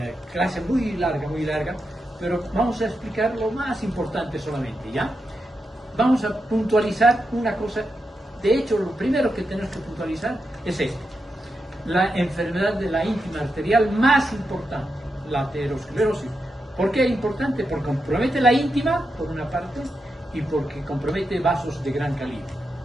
clase muy larga, pero vamos a explicar lo más importante solamente, ¿ya? Vamos a puntualizar una cosa. De hecho, lo primero que tenemos que puntualizar es esto: la enfermedad de la íntima arterial más importante, la aterosclerosis. ¿Por qué es importante? Porque compromete la íntima, por una parte, y porque compromete vasos de gran calibre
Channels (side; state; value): both; normal; correlation 0.87